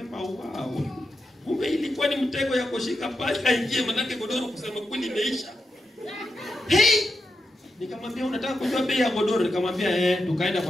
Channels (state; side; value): normal; both; correlation 0.87